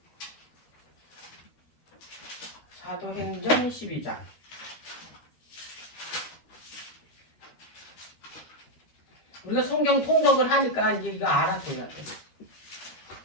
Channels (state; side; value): late; right; 13 ms